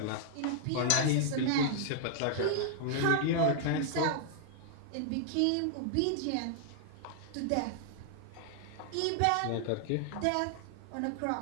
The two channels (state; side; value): different; both; correlation -0.01